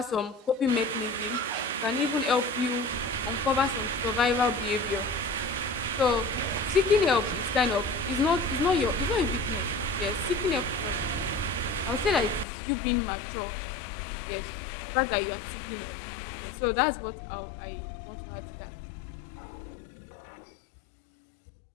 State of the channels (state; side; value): drops out; right; at 12.5 s